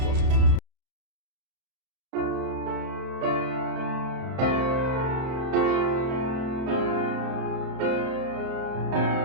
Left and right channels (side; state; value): left; late; 31 ms